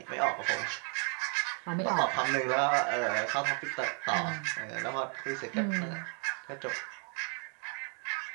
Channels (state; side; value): quieter; left; 39.7 dB